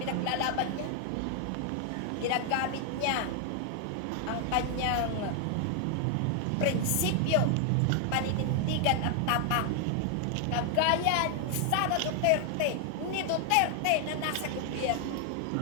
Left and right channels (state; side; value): different; both; correlation 0.00